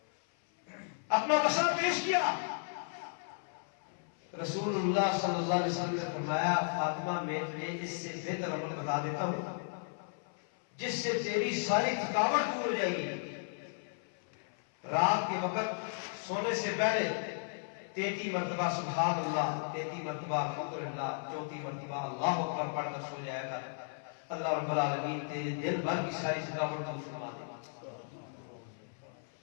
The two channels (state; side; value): silent; right; 55 dB below the other